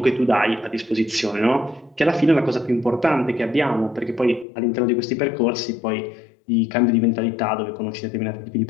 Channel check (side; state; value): right; drops out; at 4.5 s